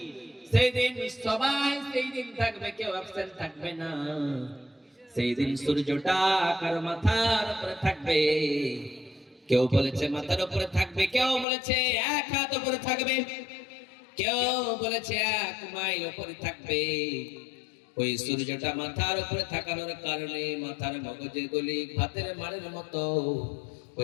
সেই দিন সবাই সেই দিন থাকবে, কেউ অ্যাবসেন্ট থাকবে না। সেই দিন সূর্যটা কার মাথার উপরে থাকবে, কেউ বলেছে মাথার উপরে থাকবে, কেউ বলেছে 1 হাত উপরে থাকবে, কেউ বলেছে 1 মাইল উপরে থাকবে। ওই সূর্যটা মাথার উপরে থাকানোর কারণে মাথার মগজের গলি ভাতের মাড়ের মতো,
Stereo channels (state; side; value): drops out; right; at 11.5 s